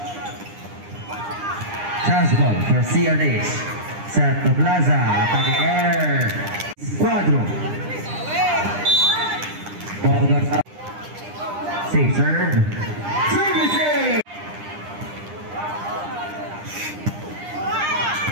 Chance ball for CRH. Set to Plaza. Attacking air. Squadron. Ball goes up. Safe serve. Services.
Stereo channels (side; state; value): left; late; 9.9 ms